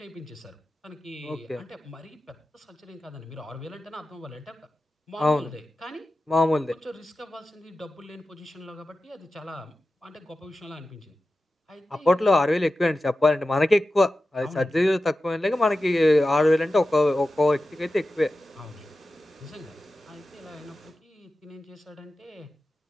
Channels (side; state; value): both; normal; correlation 0.94